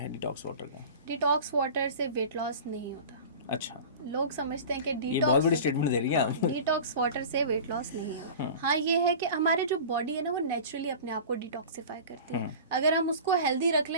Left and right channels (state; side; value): inverted; both; correlation -0.36